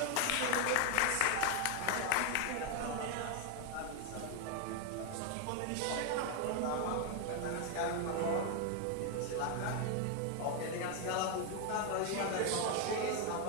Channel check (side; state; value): both; different; correlation 0.01